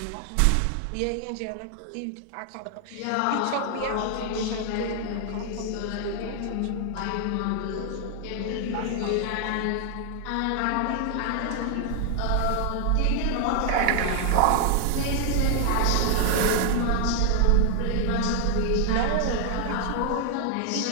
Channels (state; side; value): different; both; correlation 0.00